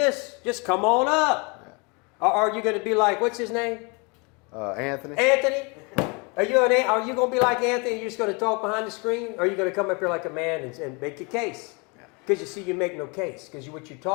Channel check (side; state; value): right; quieter; 30.8 dB